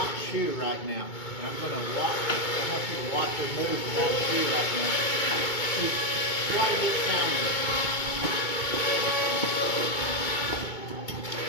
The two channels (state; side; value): late; right; 2.2 ms